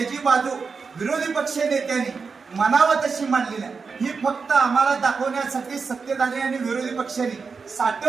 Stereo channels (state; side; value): quieter; left; 5.0 dB